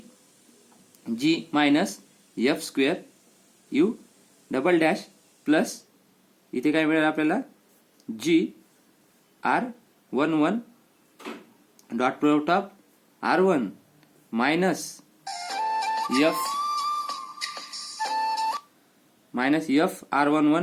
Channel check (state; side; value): identical; both; correlation 1.00